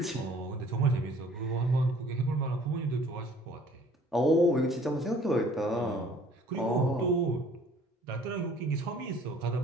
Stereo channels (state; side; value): normal; both; correlation 0.54